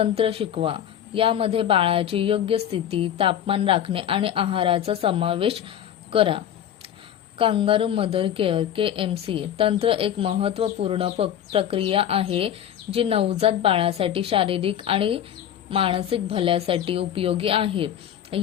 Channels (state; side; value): quieter; right; 10.1 dB